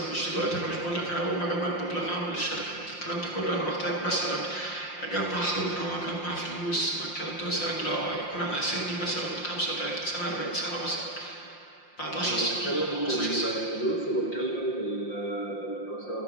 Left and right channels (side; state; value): right; late; 5.7 ms